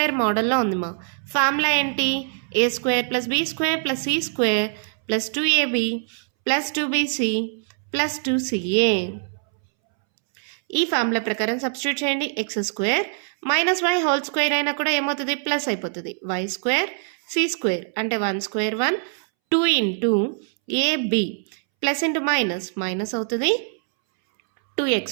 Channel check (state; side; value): silent; left; 63 dB below the other